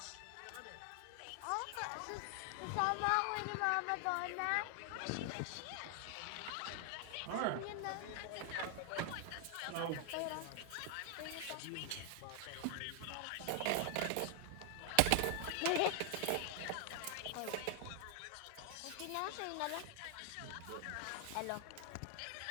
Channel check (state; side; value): different; both; correlation 0.00